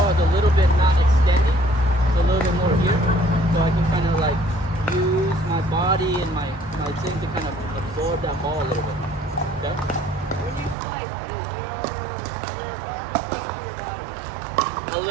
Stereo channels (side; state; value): left; drops out; at 10.8 s